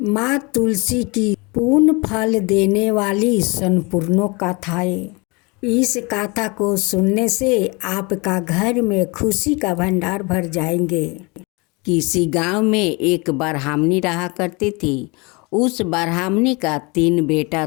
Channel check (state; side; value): quieter; right; 27.7 dB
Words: माँ तुलसी की पूर्ण फल देने वाली संपूर्ण कथाएं। इस कथा को सुनने से आपका घर में खुशी का भंडार भर जाएंगे। किसी गांव में एक ब्राह्मणी रहा करती थी। उस ब्राह्मणी का 3 बेटा